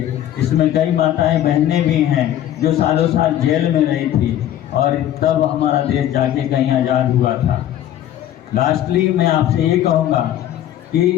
इसमें कई माताएं बहनें भी हैं जो सालों साल जेल में रही थी और तब हमारा देश जाके कहीं आज़ाद हुआ था। लास्टली मैं आपसे ये कहूँगा कि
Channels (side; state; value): right; quieter; 11.8 dB